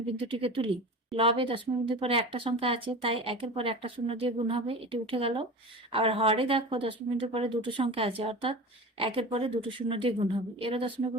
বিন্দুটিকে তুলি, লবে দশমিক বিন্দুর পরে একটা সংখ্যা আছে তাই একের পরে একটা শূন্য দিয়ে গুণ হবে, এটি উঠে গেল। আবার হরে দেখো দশমিক বিন্দুর পরে দুটো সংখ্যা আছে, অর্থাৎ একের পরে দুটো শূন্য দিয়ে গুণ হবে, এরও দশমিক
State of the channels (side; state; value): both; normal; correlation 0.32